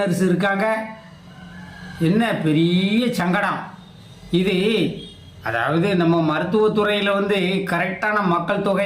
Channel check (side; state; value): both; identical; correlation 1.00